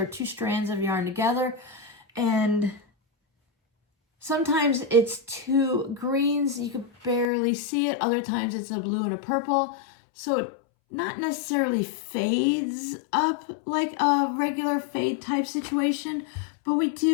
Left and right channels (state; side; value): drops out; right; at 7.3 s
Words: 2 strands of yarn together. And sometimes it's 2 greens, you can barely see it. Other times it's a blue and a purple. So it not necessarily fades up like a regular fade type situation, but we